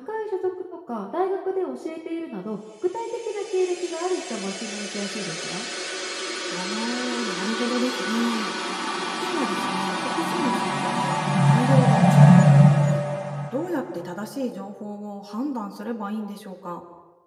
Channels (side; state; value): both; identical; correlation 1.00